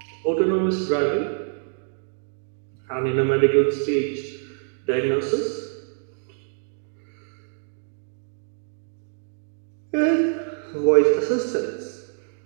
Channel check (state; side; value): silent; left; digital silence